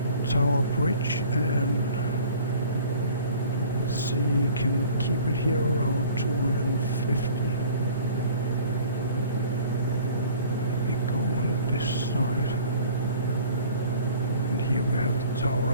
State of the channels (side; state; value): both; inverted; correlation -0.49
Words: Tower Bridge, and let's see, can we keep it here around 250? Maybe go on this side. And here we have the Tower